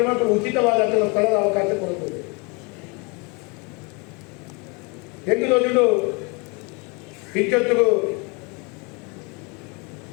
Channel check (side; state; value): right; quieter; 30.4 dB